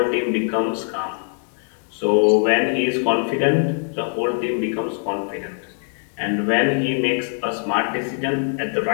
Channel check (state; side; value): silent; right; 57 dB below the other